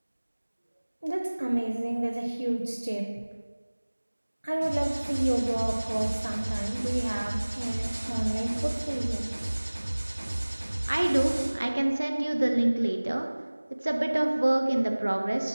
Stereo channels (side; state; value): both; inverted; correlation -1.00